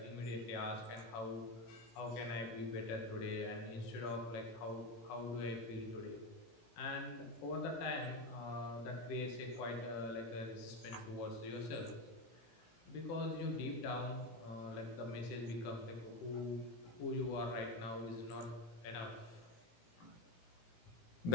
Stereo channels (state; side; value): late; right; 18 ms